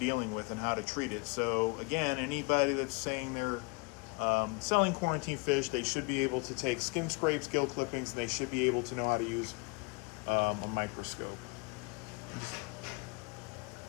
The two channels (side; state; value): right; quieter; 30.3 dB